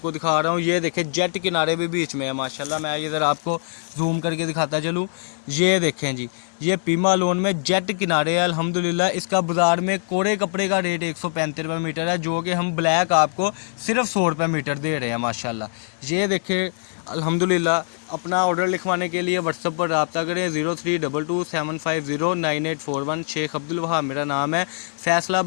दिखा रहा हूँ। ये देखें, जेट किनारे भी बीच में है माशाल्लाह। मैं ये ज़रा आपको जूम करके दिखाता चलूँ। ये देखें जी, ये पीमा लोन में जेट किनारे है अल्हम्दुलिल्लाह। इसका बाज़ार में कोरे कपड़े का रेट 135 रुपये मीटर है, जो कि हम ब्लैक आपको सिर्फ 100 रुपये मीटर दे रहे हैं माशाल्लाह। ये देखें अल्हम्दुलिल्लाह। अपना ऑर्डर लिखवाने के लिए व्हाट्सएप पर रब्ता करें 032275098841। शेख अब्दुल वहाब मेरा नाम है।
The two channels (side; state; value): right; silent; 63 dB below the other